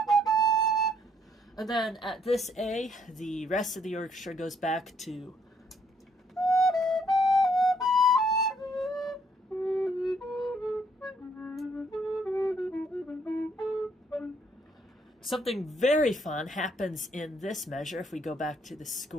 And then at this A, the rest of the orchestra goes back to something very fun happens in this measure. If we go back to the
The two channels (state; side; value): normal; both; correlation 0.68